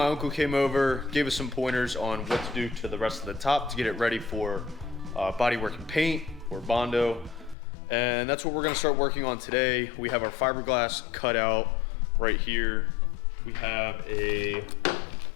uncle came over, gave us some pointers on what to do to the rest of the top to get it ready for bodywork and paint or Bondo. And that's what we're gonna start working on today. We have our fiberglass cut out right here. We have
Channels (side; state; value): right; drops out; at 7.6 s